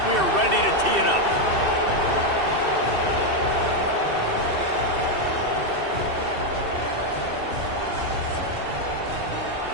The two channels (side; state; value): left; late; 2.7 ms